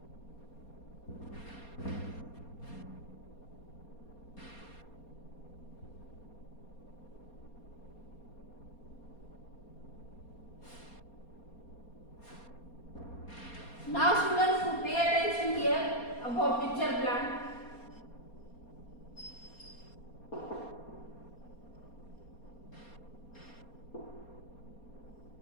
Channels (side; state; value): right; late; 4.3 ms